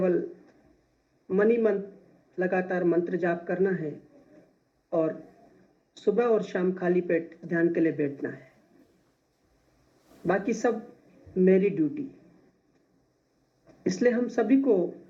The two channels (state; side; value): identical; both; correlation 1.00